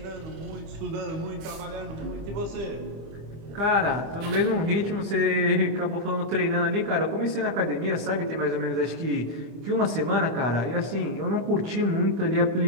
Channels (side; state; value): left; late; 25 ms